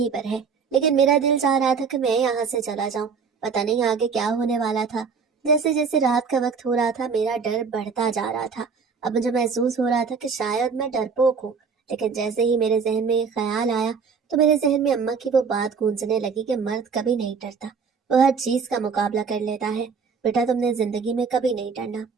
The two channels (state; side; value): quieter; left; 5.6 dB